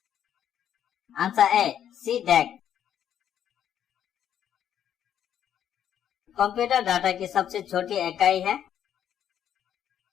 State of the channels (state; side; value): quieter; right; 9.8 dB